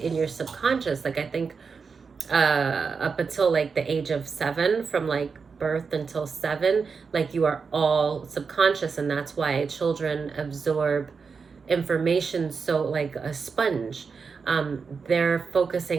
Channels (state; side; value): quieter; left; 5.3 dB